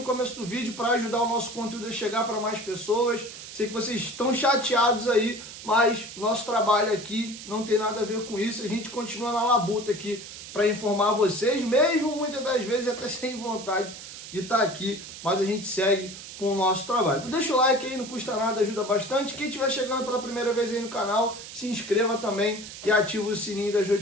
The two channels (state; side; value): noise; right; hiss, 13 dB below the sound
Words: começo do vídeo para ajudar o nosso conteúdo a chegar para mais pessoas. Sei que vocês estão chateados aí, mas nosso trabalho aqui não tem nada a ver com isso. A gente continua na labuta aqui para informar vocês, mesmo muitas das vezes até sem vontade de estar aqui, mas a gente segue com o nosso trabalho. Então deixa o like aí, não custa nada, ajuda bastante. Quem estiver chegando pela primeira vez aí no canal, se inscreva também e ative o sininho das